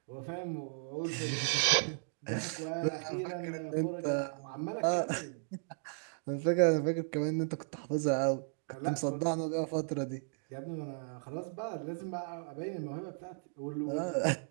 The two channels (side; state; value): left; silent; digital silence